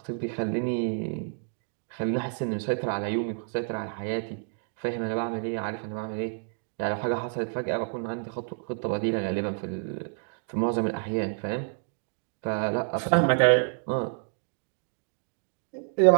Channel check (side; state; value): left; silent; 59 dB below the other